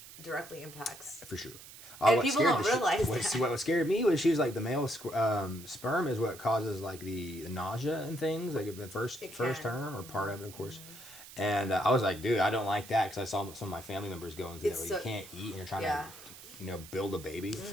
directly impacts. For sure. And people don't realize that. What scared me was she was like the male sperm is what causes like the nausea and things, like the first term or part of it, of course. Mm-hmm. And I was like, dude, I don't like that because I saw some of my family members going through that where you can't eat and you're trying to, build a baby.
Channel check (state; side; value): noise; right; hiss, 16 dB below the sound